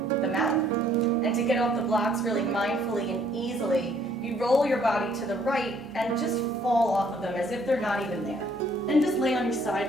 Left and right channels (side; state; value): both; normal; correlation 0.63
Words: the mat. And to get off the blocks really mindfully and easily, you roll your body to the right and just fall off of them as if they're not even there. And just lay on your